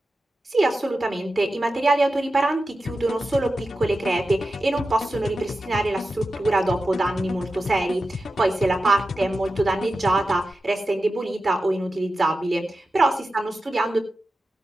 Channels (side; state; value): both; normal; correlation 0.92